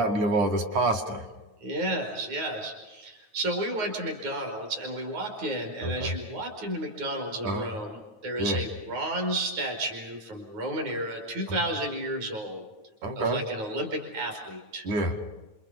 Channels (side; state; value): left; late; 9.3 ms